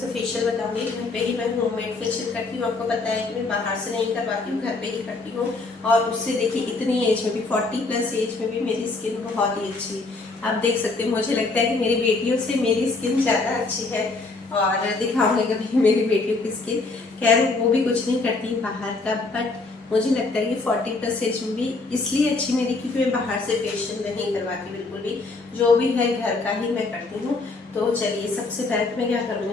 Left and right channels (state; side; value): quieter; right; 3.6 dB